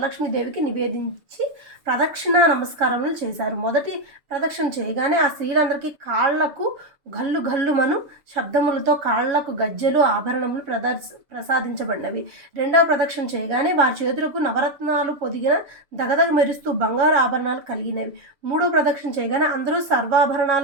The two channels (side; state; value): left; late; 7.2 ms